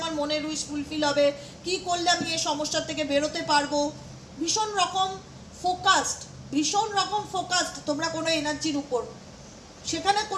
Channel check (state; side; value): identical; both; correlation 1.00